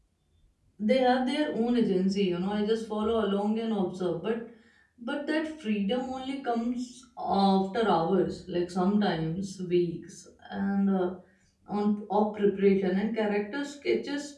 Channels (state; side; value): identical; both; correlation 1.00